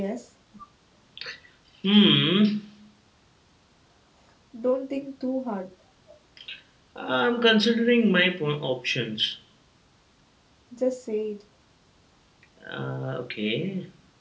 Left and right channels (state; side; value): identical; both; correlation 1.00